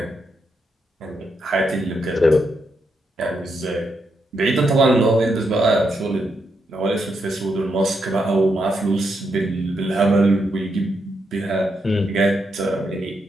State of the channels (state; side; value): normal; both; correlation 0.81